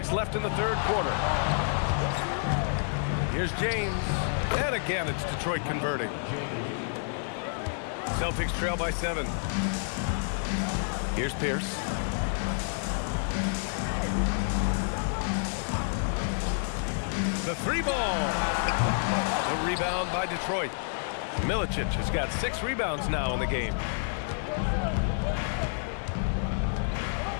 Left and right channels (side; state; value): right; silent; digital silence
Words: left in the third quarter. Here's James. And again, it's Detroit converting. Celtics trail by 7. Here's Pierce. The 3 ball. The rebound by Detroit. Milicic has got 6 rebounds now in the game.